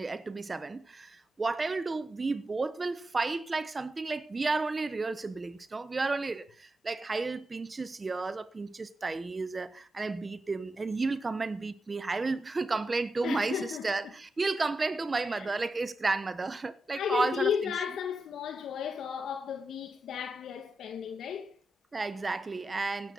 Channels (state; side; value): normal; both; correlation 0.88